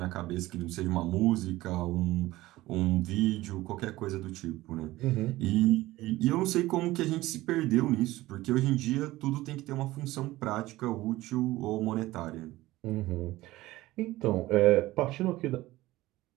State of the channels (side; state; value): left; quieter; 17.6 dB